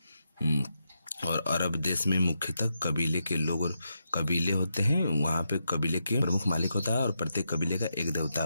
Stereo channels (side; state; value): both; inverted; correlation -0.84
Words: और अरब देश में मुख्यतः कबीले के लोग और कबीले होते हैं। वहाँ पे कबीले के प्रमुख मालिक होता है और प्रत्येक कबीले का एक देवता